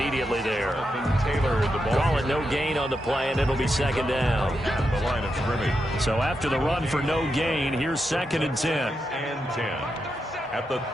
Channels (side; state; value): both; normal; correlation 0.85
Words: there. Taylor, the ball. Call it no gain on the play, and it'll be 2nd down. The line of scrimmage. So after the run for no gain, here's 2nd and 10. And 10 at the